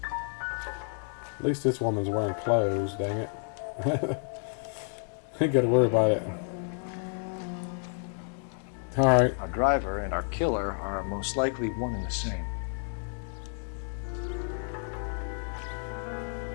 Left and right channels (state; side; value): silent; right; 58 dB below the other